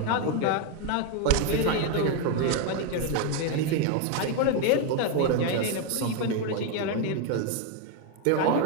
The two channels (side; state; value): both; different; correlation 0.01